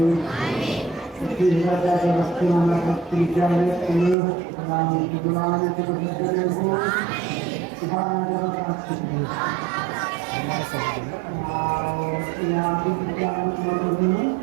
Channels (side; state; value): left; drops out; at 4.2 s